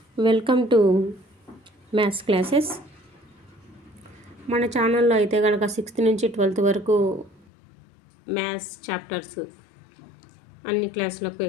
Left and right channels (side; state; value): right; drops out; at 7.5 s